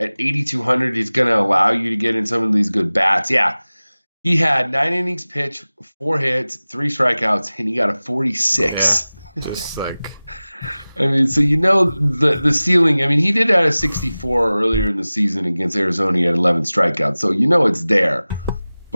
8,200, he's going to allow you to get in some of these good bats. Yeah, he had 9 innings pitched, 4 hits, 3 strikeouts, and he got a yeah, 46. just like, I mean, so the ceiling. I mean, he did have a 64 earlier in the season against Arizona. He had 11 strikeouts, so it's there.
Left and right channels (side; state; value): both; inverted; correlation -0.98